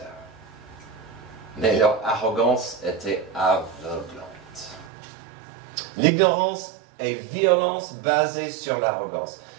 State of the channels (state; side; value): drops out; left; at 4.9 s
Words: Mais leur arrogance était aveuglante. L'ignorance et violence basée sur l'arrogance.